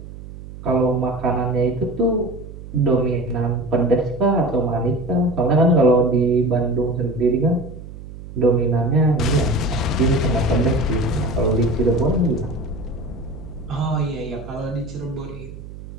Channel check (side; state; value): right; noise; hum, 14 dB below the sound